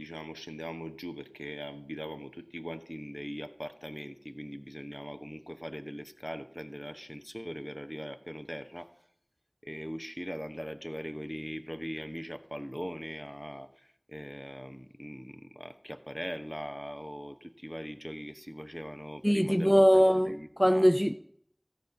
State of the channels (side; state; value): both; identical; correlation 1.00